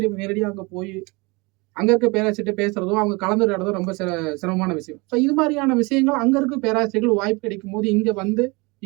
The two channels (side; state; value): left; quieter; 26.6 dB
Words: நேரடியாக அங்க போய் அங்க இருக்க பேராசிரியர்கிட்ட பேசுறதோ, அவங்க கலந்துரையாடுறதோ ரொம்ப சிரமமான விஷயம். ஸோ இது மாதிரியான விஷயங்கள் அங்க இருக்க பேராசிரியர்கள் வாய்ப்பு கிடைக்கும்போது இங்க வந்து